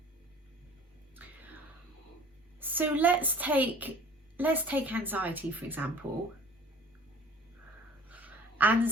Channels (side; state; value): both; normal; correlation 0.47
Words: So let's take anxiety, for example.